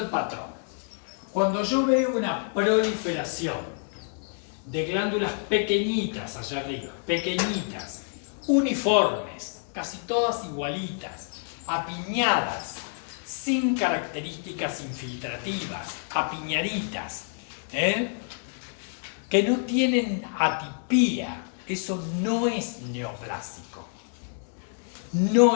patrón. Cuando yo veo una proliferación de glándulas pequeñitas allá arriba, pequeñitas, uniformes, casi todas igualitas, apiñadas, sin características infiltrativas, apiñaditas, que no tienen atipía, eso no es neoplásico. No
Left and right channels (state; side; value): silent; right; 60 dB below the other